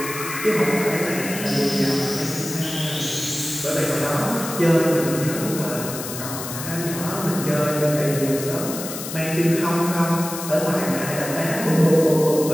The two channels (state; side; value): noise; left; hiss, 8 dB below the sound